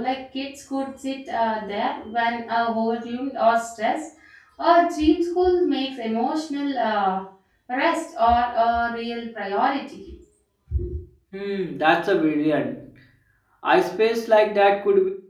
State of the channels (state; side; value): identical; both; correlation 1.00